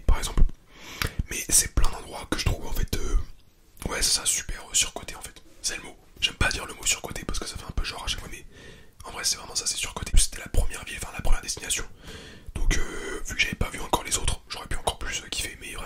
par exemple. Mais c'est plein d'endroits que je trouve en fait, ouais c'est ça, super surcoté en fait. C'est le mot. J'aime pas dire le mot surcoté parce que ça fait un peu genre à chaque fois, mais en vrai c'est vraiment ça, c'est surcoté. C'était la première ville, la première destination. Donc vu que j'avais pas vu encore les autres, j'aurais pu encore plus kiffer, mais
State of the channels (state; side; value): identical; both; correlation 1.00